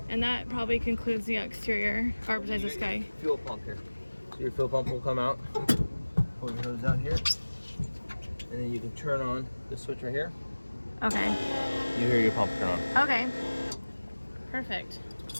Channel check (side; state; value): both; inverted; correlation -1.00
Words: And that probably concludes the exterior, or besides this guy. Fuel pump here. So your fuel pump will come out. Pull your hose out here. And then you can turn on the switch right here. Okay. You hear your pump turn on. Okay. Perfect.